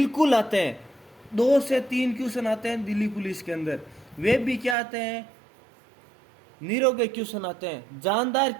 आते हैं, 2 से 3 क्वेश्चन आते हैं दिल्ली पुलिस के अंदर। वे भी क्या आते हैं? निरोगे क्वेश्चन आते हैं, जानदार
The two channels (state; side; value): drops out; left; at 4.8 s